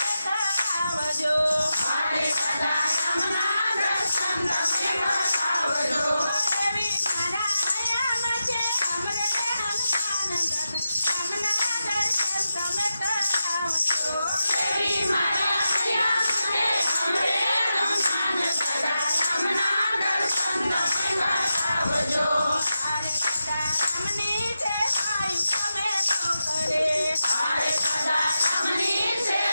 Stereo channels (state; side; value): inverted; both; correlation -0.90